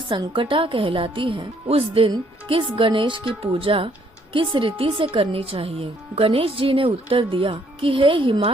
कहलाती है, उस दिन किस गणेश की पूजा किस रीति से करनी चाहिए। गणेश जी ने उत्तर दिया कि हे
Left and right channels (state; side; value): normal; both; correlation 0.67